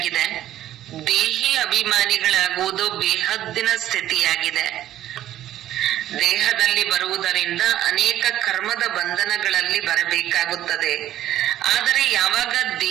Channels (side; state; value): left; quieter; 12.9 dB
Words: ದೇಹಿ ಅಭಿಮಾನಿಗಳಾಗುವುದು ಬೇಹದ್ದಿನ ಸ್ಥಿತಿಯಾಗಿದೆ. ದೇಹದಲ್ಲಿ ಬರುವುದರಿಂದ ಅನೇಕ ಕರ್ಮದ ಬಂಧನಗಳಲ್ಲಿ ಬರಬೇಕಾಗುತ್ತದೆ. ಆದರೆ ಯಾವಾಗ